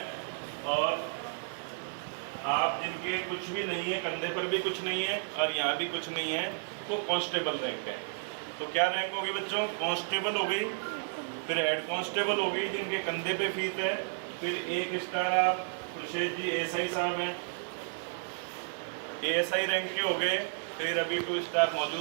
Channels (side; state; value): left; silent; digital silence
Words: और आप जिनके कुछ भी नहीं है, कंधे पर भी कुछ नहीं है और यहाँ भी कुछ नहीं है, वो कांस्टेबल रैंक है। तो क्या रैंक होगी बच्चों? कांस्टेबल हो गई, फिर हेड कांस्टेबल हो गई जिनके कंधे पे फीस है, फिर 1 स्टार आप खुर्शीद जी एएसआई साहब हैं, एएसआई रैंक के हो गए। फिर अभी 2 स्टार